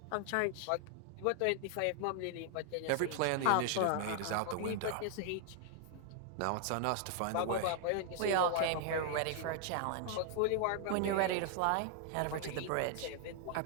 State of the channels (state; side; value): different; both; correlation 0.00